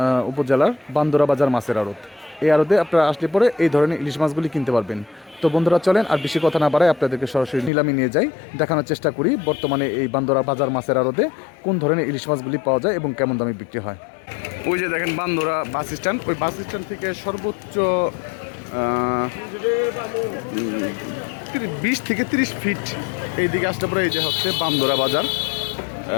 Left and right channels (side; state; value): right; drops out; at 7.7 s